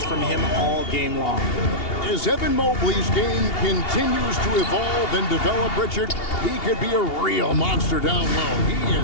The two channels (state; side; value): late; right; 2.8 ms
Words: from him all game long. As Evan Mobley's game continues to evolve and develop, Richard, he could be a real monster down low. He is